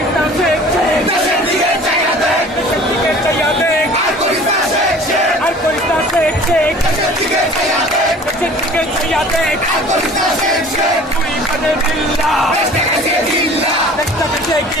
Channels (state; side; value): normal; both; correlation 0.46